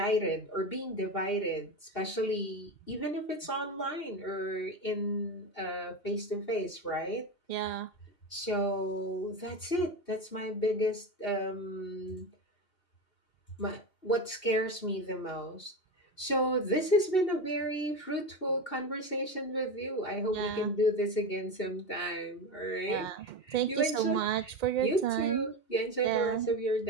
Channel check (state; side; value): late; right; 2.7 ms